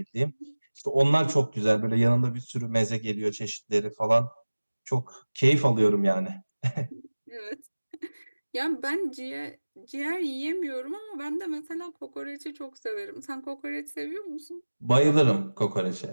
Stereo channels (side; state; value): both; inverted; correlation -1.00